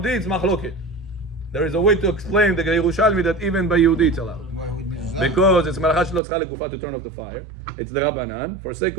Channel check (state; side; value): drops out; left; at 6.2 s